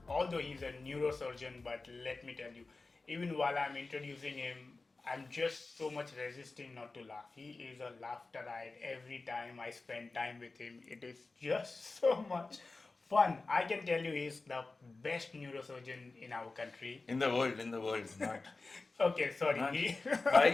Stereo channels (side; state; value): right; quieter; 3.6 dB